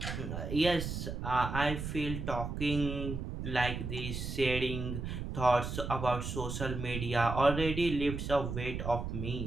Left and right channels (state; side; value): noise; right; rumble, 5 dB below the sound